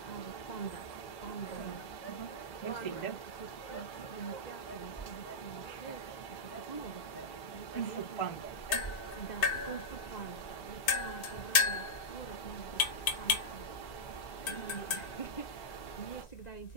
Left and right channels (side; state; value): right; late; 2.5 ms